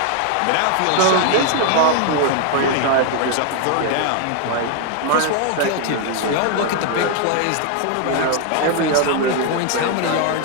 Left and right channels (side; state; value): both; different; correlation 0.00